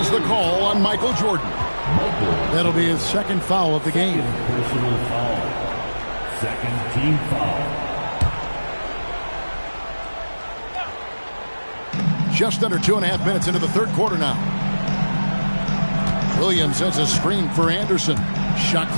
the call on Michael Jordan. That'll be his second foul of the game. Personal foul. Second team foul. Just under 2.5 minutes into the third quarter now. Williams sets a screen for Anderson. Shot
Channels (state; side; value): inverted; both; correlation -1.00